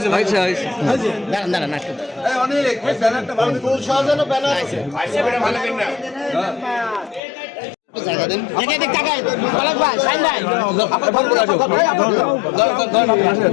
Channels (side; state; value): right; drops out; at 7.2 s